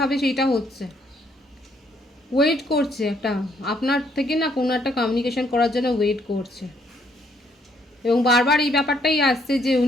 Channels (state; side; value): normal; both; correlation 0.69